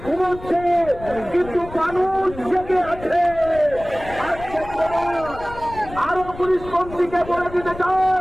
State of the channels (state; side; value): noise; left; rumble, 15 dB below the sound